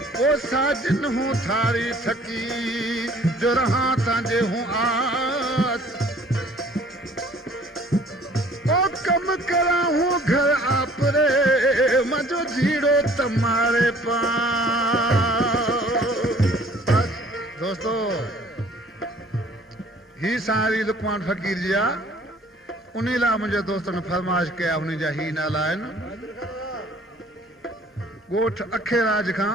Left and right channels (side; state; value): both; normal; correlation 0.54